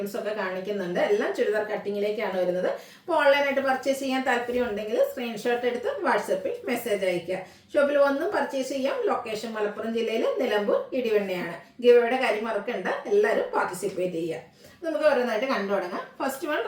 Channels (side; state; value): both; identical; correlation 1.00